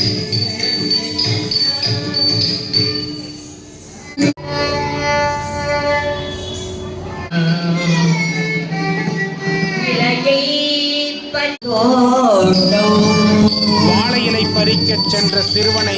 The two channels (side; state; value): both; identical; correlation 1.00